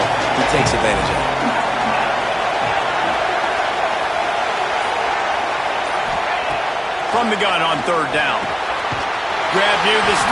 he takes advantage of it. From the gun on third down. Grab near the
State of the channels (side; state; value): both; identical; correlation 1.00